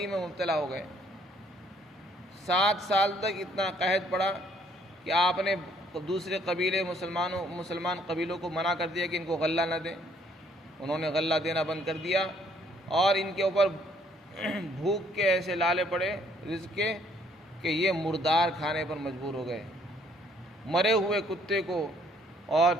میں مبتلا ہو گئے۔ 7 سال تک اتنا قحط پڑا کہ آپ نے دوسرے قبیلے مسلمان قبیلوں کو منع کر دیا کہ ان کو غلہ نہ دیں۔ انہوں نے غلہ دینا بند کر دیا، اور ان کے اوپر بھوک کے ایسے لالے پڑے رزق کے کہ یہ مردار کھانے پر مجبور ہو گئے، مرے ہوئے کتے کو اور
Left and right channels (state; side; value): normal; both; correlation 0.65